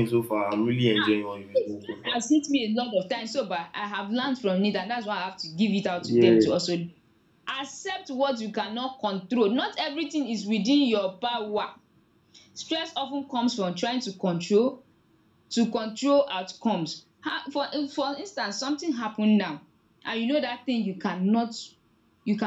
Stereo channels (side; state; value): both; identical; correlation 1.00